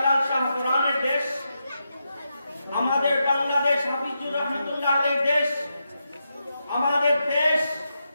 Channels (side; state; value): both; inverted; correlation -0.86